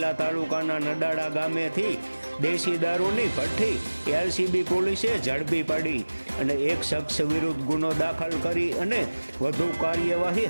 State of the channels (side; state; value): both; inverted; correlation -1.00